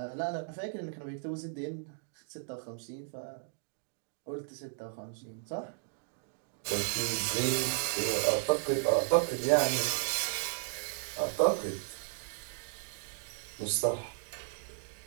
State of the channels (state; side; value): silent; left; digital silence